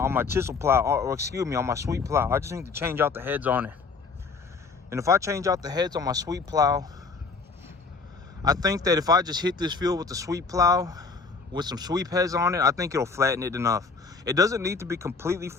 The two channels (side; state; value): right; quieter; 4.5 dB